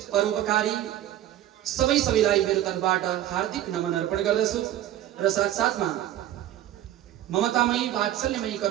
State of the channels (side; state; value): left; quieter; 12.7 dB